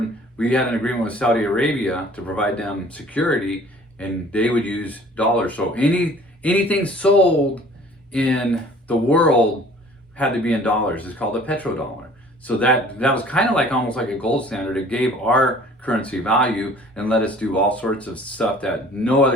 We had an agreement with Saudi Arabia to provide them security, and they would use dollars. So anything sold in the world had to be in dollars. It's called a petrodollar. So that was kind of like almost like a gold standard. It gave our currency value and let us do all sorts of stuff that no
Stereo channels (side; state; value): both; normal; correlation 0.51